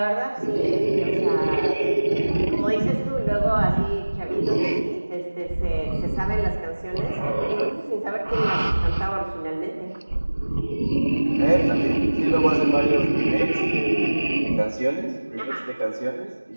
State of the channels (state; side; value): inverted; both; correlation -1.00